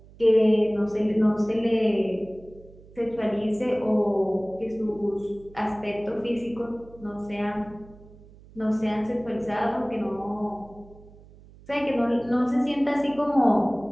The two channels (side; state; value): right; noise; hum, 22 dB below the sound